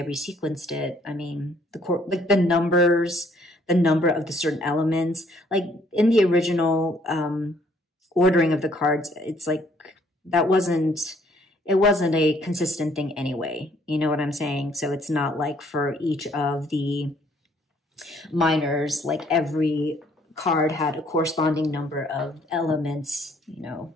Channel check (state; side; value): normal; both; correlation 0.63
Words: resequenced it. I mean, the numbers, the number of the certain elements, like in the original ordering of the cards, it's like it wasn't a consistent thing anyway. You know what I'm saying? So it's not like for each of the minors, like every card had a corresponding number of elements, you know,